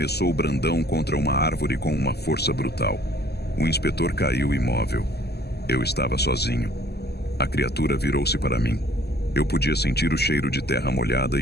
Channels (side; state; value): right; late; 0.47 ms